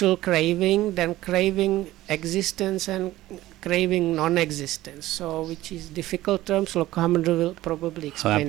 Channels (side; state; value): left; quieter; 16.0 dB